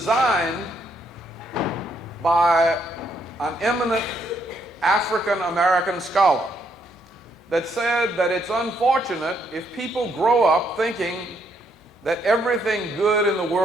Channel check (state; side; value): normal; both; correlation 0.73